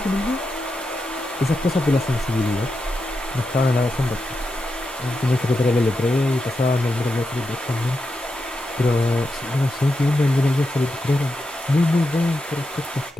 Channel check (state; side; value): normal; both; correlation 0.87